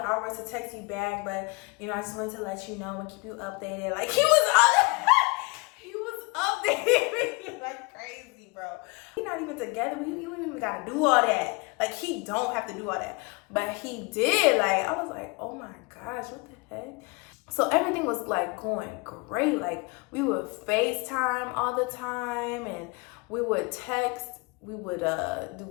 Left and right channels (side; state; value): right; quieter; 27.8 dB